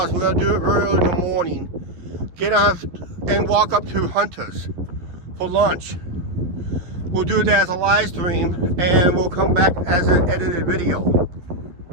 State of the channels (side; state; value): left; late; 11 ms